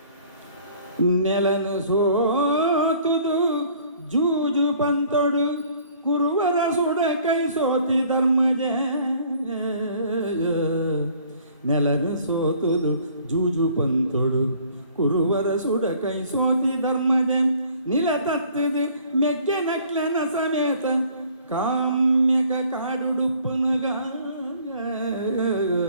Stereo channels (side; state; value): both; inverted; correlation -0.56